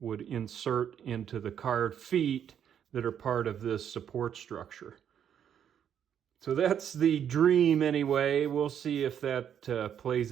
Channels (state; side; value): quieter; left; 9.0 dB